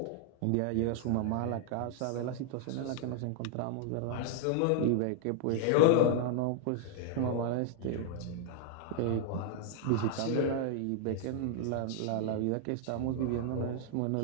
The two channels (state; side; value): different; both; correlation 0.00